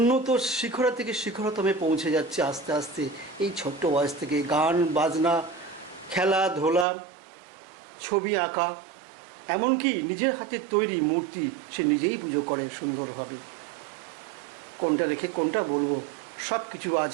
শিখরা থেকে শিখরতমে পৌঁছে যাচ্ছে আস্তে আস্তে। এই ছোট্ট বয়স থেকে গান বাজনা, খেলাধুলা, ছবি আঁকা, এমনকি নিজের হাতের তৈরি মূর্তি সে নিজেই পুজো করে সুন্দরভাবে। কোনটা রেখে কোনটা বলবো, সব কিছু আজ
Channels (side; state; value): left; drops out; at 6.9 s